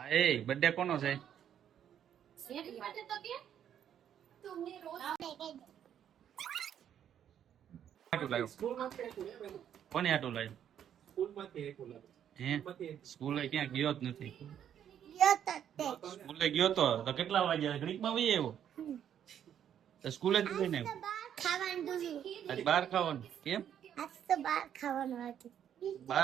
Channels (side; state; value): left; quieter; 9.6 dB